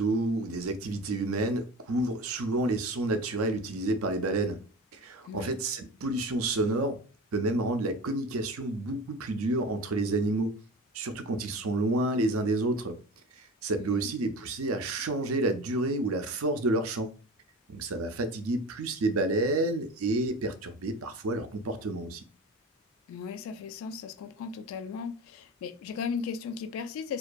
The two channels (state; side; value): normal; both; correlation 0.33